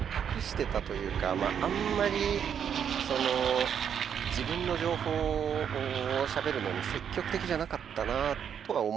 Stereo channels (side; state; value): left; quieter; 8.2 dB